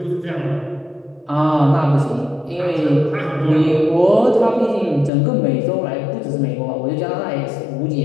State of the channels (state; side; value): drops out; right; at 5.1 s